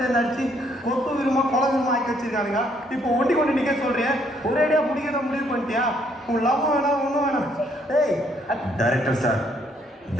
அடிச்சு கொத்து விரும்பா கொலை விரும்பா ஆக்கி வச்சிருக்கானுங்க. இப்போ ஒண்டி கொண்டு நிக்க சொல்றேன். ஒரேடியா முடிக்கிறத முடிவு பண்ணிட்டியா? உன் லவ் வேணாம் ஒன்றும் வேணாம். ஏய் டைரக்டர் சார்,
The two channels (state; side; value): normal; both; correlation 0.68